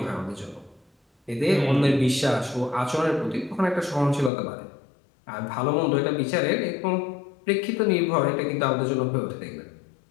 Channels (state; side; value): drops out; right; at 4.3 s